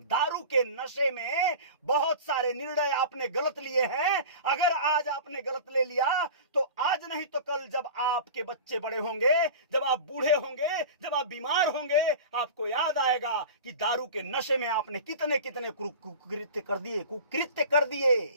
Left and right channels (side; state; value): both; inverted; correlation -0.34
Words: के नशे में बहुत सारे निर्णय आपने गलत लिए हैं। अगर आज आपने गलत ले लिया तो आज नहीं तो कल जब आपके बच्चे बड़े होंगे, जब आप बूढ़े होंगे, जब आप बीमार होंगे, आपको याद आएगा कि दारू के नशे में आपने कितने कितने कुकृत्य कर दिए।